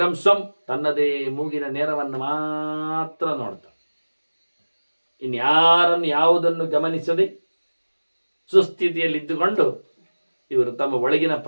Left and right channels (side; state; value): both; inverted; correlation -1.00